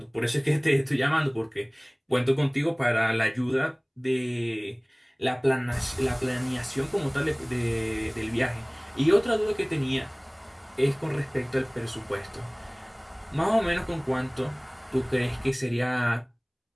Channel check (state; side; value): identical; both; correlation 1.00